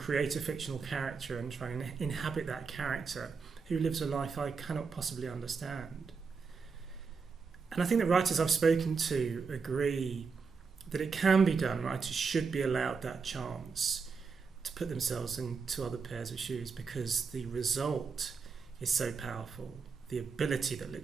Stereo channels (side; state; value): left; quieter; 5.2 dB